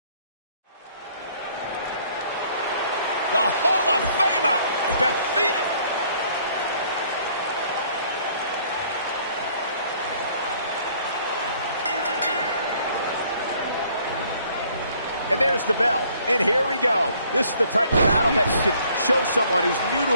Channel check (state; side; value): inverted; both; correlation -0.61